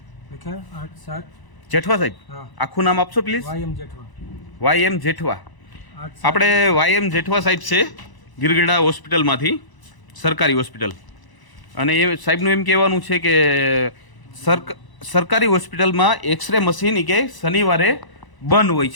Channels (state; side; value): late; right; 1.0 ms